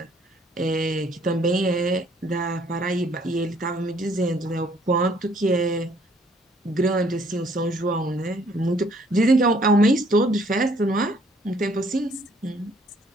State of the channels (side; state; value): both; normal; correlation 0.63